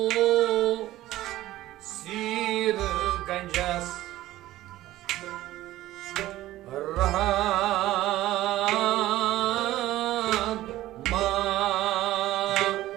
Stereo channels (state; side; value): quieter; left; 15.4 dB